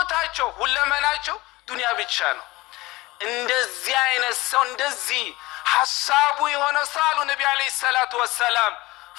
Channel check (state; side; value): quieter; right; 20.3 dB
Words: ሁለመናቸው ዱንያ ብቻ ነው። እንደዚህ አይነት ሰው እንደዚህ ሐሳቡ የሆነ ሳሉ ነብዩ አለይሂ ሰላቱ ወሰላም